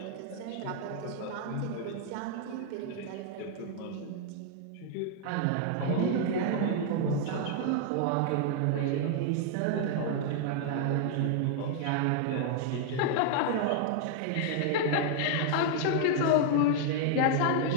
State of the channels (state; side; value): different; both; correlation -0.01